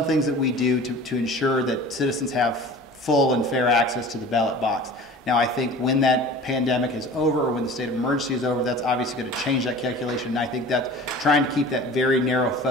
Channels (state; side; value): normal; both; correlation 0.41